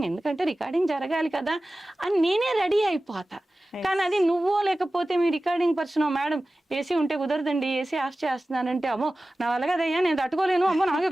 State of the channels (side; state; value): both; normal; correlation 0.96